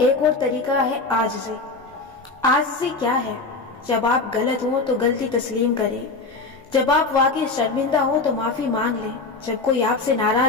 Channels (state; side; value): quieter; right; 3.7 dB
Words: اور طریقہ ہے عاجزی۔ عاجزی کیا ہے؟ جب آپ غلط ہوں تو غلطی تسلیم کریں، جب آپ واقعی شرمندہ ہوں تو معافی مانگ لیں، جب کوئی آپ سے